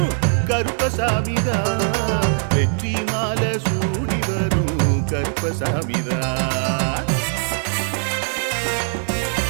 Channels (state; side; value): silent; left; 65 dB below the other